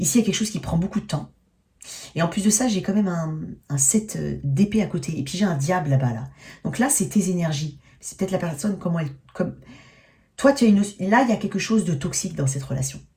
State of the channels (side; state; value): both; identical; correlation 1.00